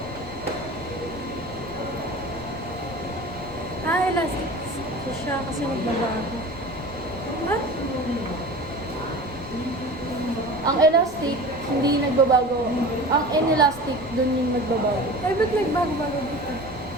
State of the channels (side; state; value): right; noise; rumble, 20 dB below the sound